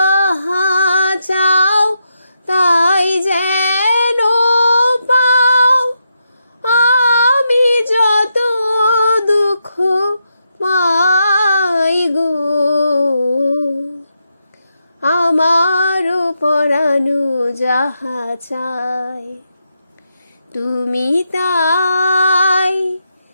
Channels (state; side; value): inverted; both; correlation -0.84